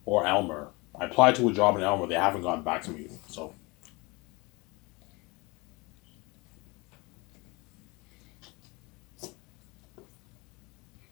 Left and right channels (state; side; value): quieter; right; 26.0 dB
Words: Or Elmer. I applied to a job in Elmer. They haven't gotten back to me. So,